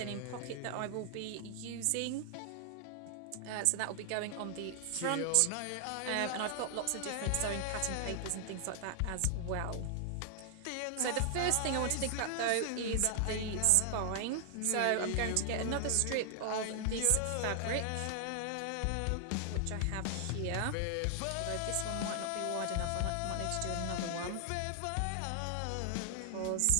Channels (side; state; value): both; different; correlation 0.00